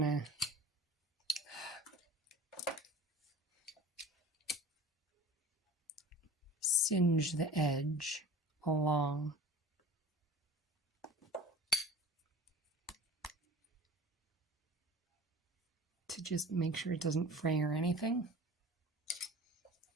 singe the edge along. To just make sure it doesn't fray or anything.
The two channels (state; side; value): normal; both; correlation 0.39